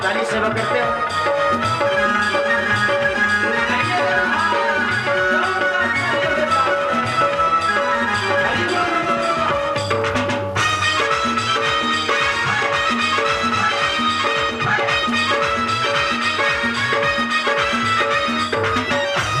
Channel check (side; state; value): both; identical; correlation 1.00